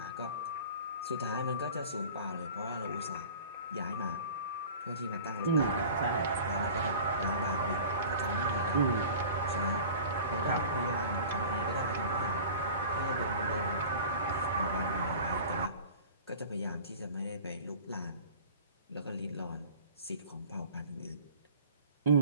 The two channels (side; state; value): both; inverted; correlation -0.41